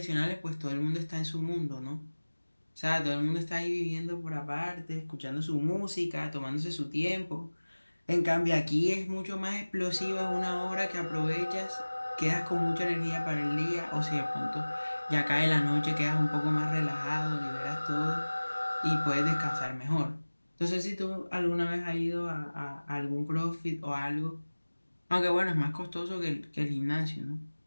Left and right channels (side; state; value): both; inverted; correlation -1.00